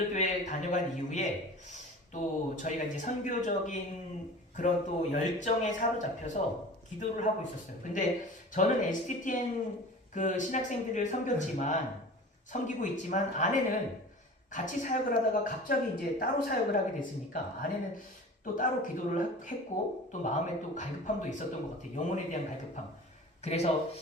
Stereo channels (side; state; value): both; normal; correlation 0.39